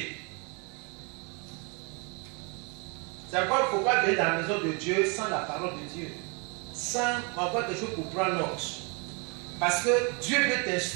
C'est pourquoi il ne faut pas venir dans la maison de Dieu sans la parole de Dieu, sans avoir quelque chose pour prendre note. Parce que Dieu veut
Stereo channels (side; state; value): left; quieter; 33.5 dB